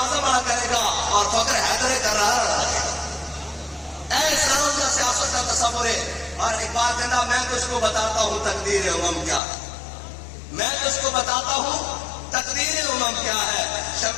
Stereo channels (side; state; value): right; drops out; at 9.4 s